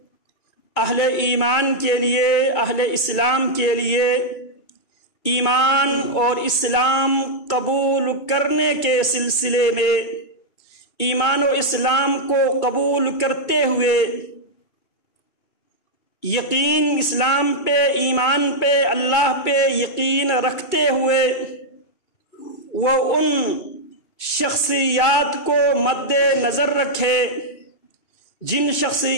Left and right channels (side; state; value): right; late; 2.3 ms